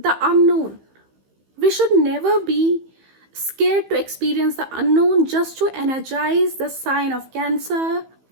unknown. We should never be scared to experience the unknown, just to energize the sign of Cancer,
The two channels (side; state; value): left; late; 15 ms